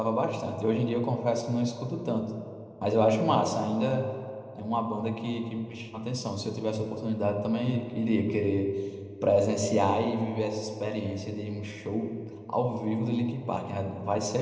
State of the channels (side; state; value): both; identical; correlation 1.00